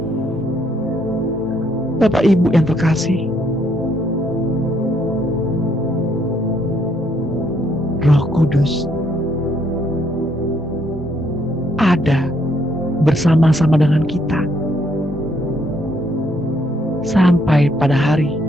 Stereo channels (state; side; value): normal; both; correlation 0.71